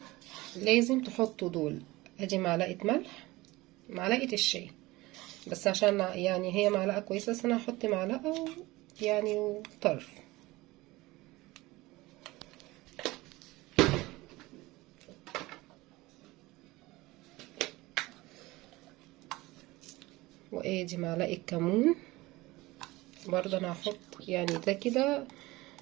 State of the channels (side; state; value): left; quieter; 20.2 dB